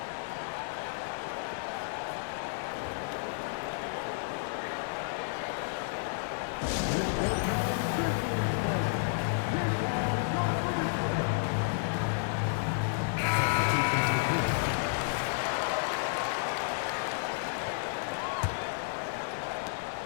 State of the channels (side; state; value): right; silent; digital silence